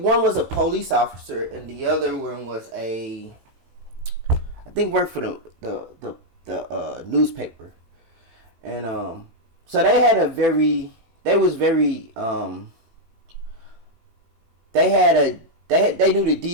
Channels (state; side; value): late; left; 18 ms